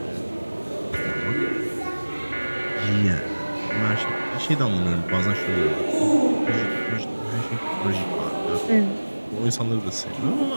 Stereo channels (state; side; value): inverted; both; correlation -1.00